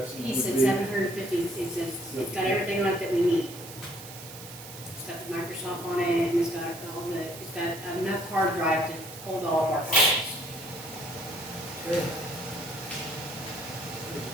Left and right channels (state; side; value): noise; right; hiss, 14 dB below the sound